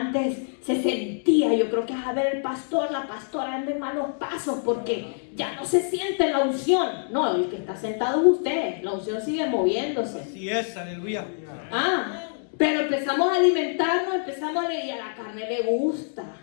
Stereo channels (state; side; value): silent; right; digital silence